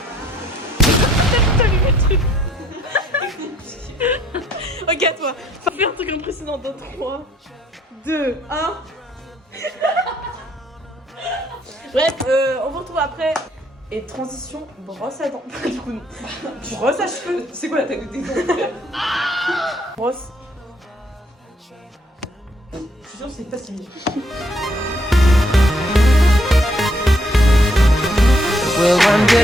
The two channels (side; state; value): both; normal; correlation 0.68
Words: T'as vu le truc. Ok, à toi. Fais un truc impressionnant dans 3, 2, 1. Bref, on vous retrouve après. Et transition, brosse à dents. Du coup, non. Brosse à cheveux. C'est quoi la taille de tes dents? Brosse. Je suis sûre que c'est pas si bien. Well, one day